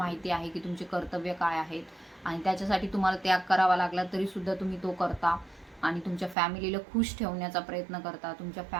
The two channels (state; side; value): drops out; left; at 6.4 s